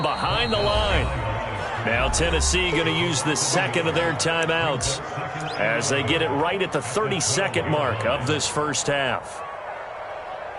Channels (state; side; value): identical; both; correlation 1.00